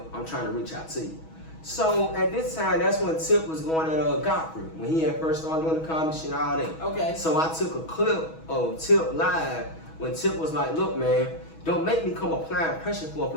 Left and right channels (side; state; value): right; late; 6.2 ms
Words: I'm trying to reach out to you. So at this time, that's when Tip was going at Godfrey, when he had first started doing the comedy shit, all that. Okay. So I took a clip of Tip live when Tip was like, look, man, don't make me come applying pressure for a